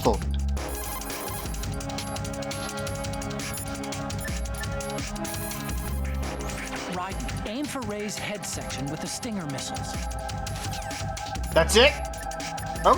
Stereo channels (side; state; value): both; identical; correlation 1.00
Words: Raiden, aim for Ray's head section with the Stinger missiles. That's it?